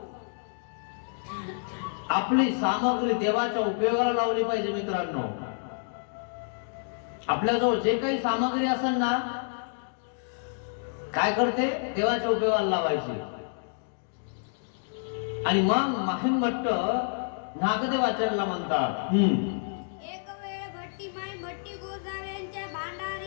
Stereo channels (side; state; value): right; silent; digital silence